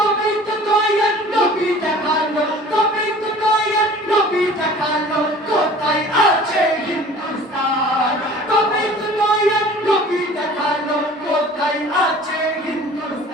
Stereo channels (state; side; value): normal; both; correlation 0.46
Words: তো দয়াল নবী দেখালো তবে তো দয়াল নবী দেখালো কোথায় আছে হিন্দুস্তান তবে তো দয়াল নবী দেখালো কোথায় আছে